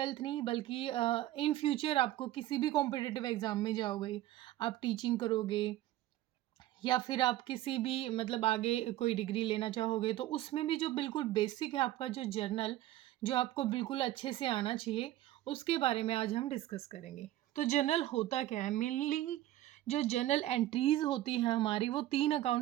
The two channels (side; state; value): left; quieter; 14.7 dB